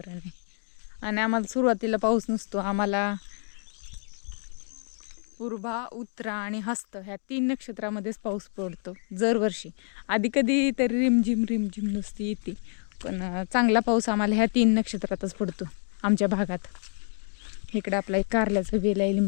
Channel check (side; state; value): right; silent; 59 dB below the other